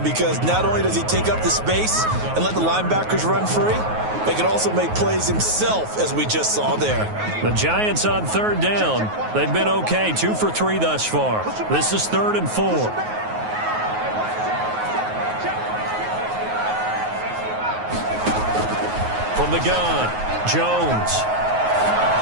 because not only does he take up the space and let the linebackers run free, but he can also make plays himself, as we just saw there. The Giants on third down. They've been okay, 2 for 3 thus far. This is 3rd and 4. From the gun, Jones.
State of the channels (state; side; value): late; left; 9.4 ms